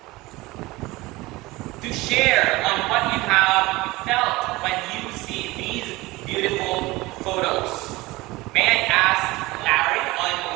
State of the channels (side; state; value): left; quieter; 20.7 dB